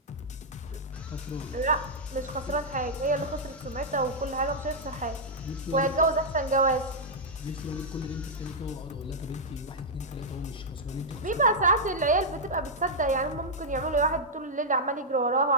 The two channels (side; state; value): both; normal; correlation -0.06